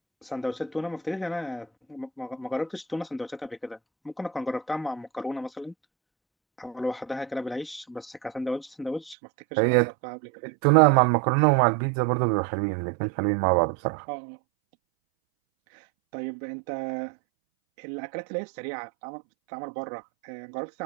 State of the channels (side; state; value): left; drops out; at 9.2 s